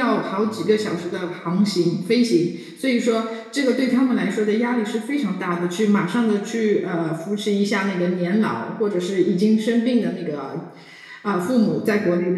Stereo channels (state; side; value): identical; both; correlation 1.00